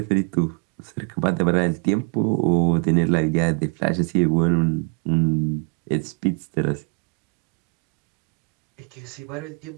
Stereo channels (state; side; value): quieter; left; 34.6 dB